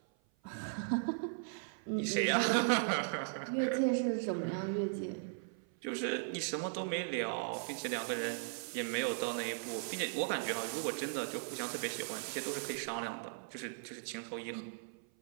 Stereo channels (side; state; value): left; silent; 53 dB below the other